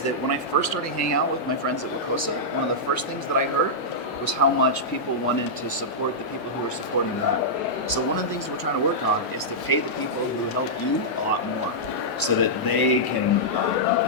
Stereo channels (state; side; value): normal; both; correlation -0.10